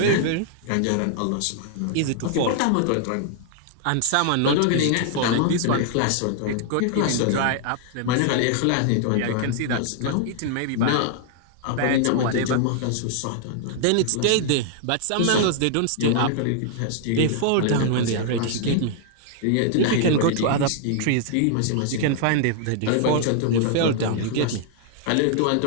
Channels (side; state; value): both; different; correlation 0.00